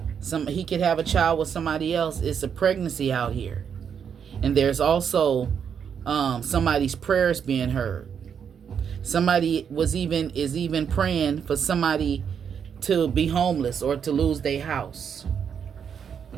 he could have a child with somebody else. It's a pregnancy out here. And there's also somebody's prayers being heard. Somebody is even praying for somebody to be homeless or to lose their house.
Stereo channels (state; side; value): quieter; left; 7.4 dB